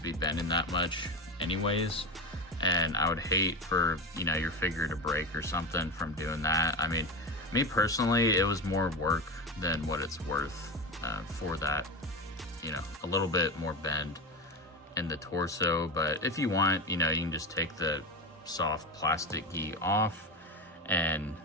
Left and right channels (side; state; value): both; normal; correlation 0.20